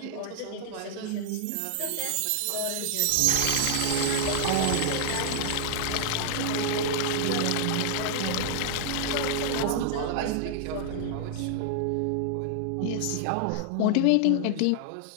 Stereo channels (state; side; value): different; both; correlation 0.00